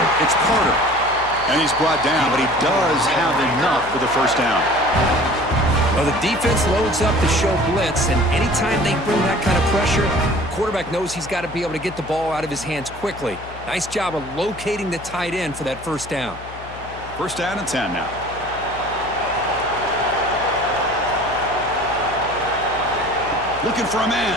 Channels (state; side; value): noise; left; hum, 16 dB below the sound